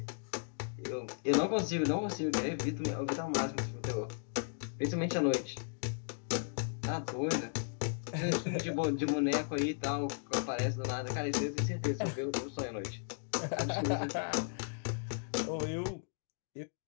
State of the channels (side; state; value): right; silent; digital silence